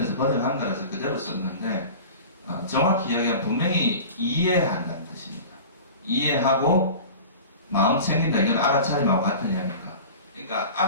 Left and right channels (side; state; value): both; inverted; correlation -0.36